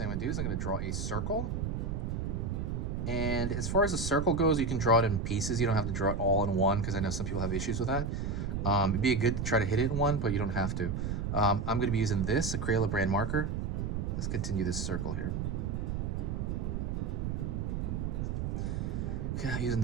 I'm gonna do is I'm gonna draw a circle. And as far as the circle goes, you can draw it in pieces. You don't have to draw it all in one because I know some people have issues with that. It'd be good to try to hit it in one, but you don't have to. I'm going to be using this, a Crayola brand marker. Let's continue this circle here. Okay, using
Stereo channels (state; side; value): noise; right; rumble, 1 dB below the sound